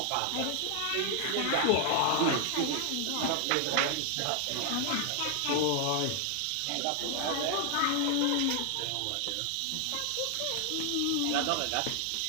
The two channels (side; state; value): both; different; correlation 0.00